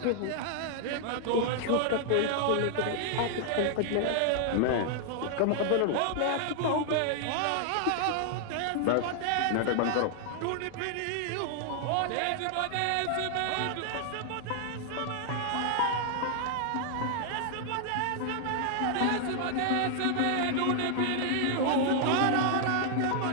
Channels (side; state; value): both; different; correlation -0.01